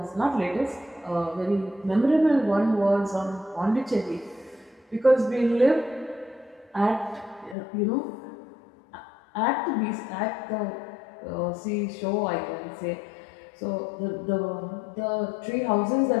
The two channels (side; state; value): right; drops out; at 7.6 s